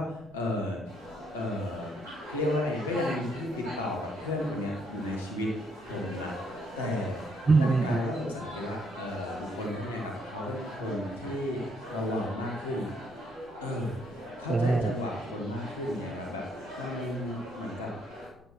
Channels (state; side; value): noise; left; rumble, 26 dB below the sound